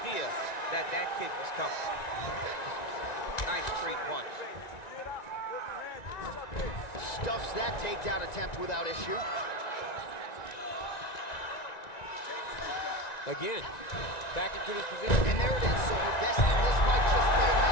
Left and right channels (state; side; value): late; right; 1.9 ms